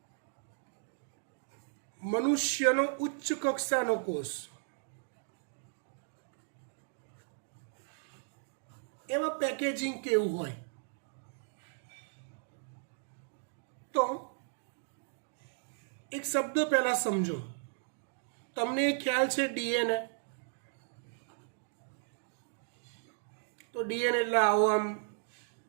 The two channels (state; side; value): silent; left; digital silence